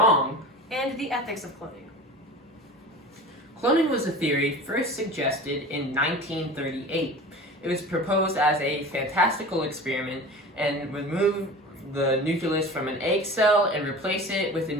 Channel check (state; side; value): normal; both; correlation 0.36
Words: and the ethics of cloning. Cloning was a theory first suggested in 1938. It was proposed as a fantastical experiment and would move the nucleus from an egg cell and replace it with a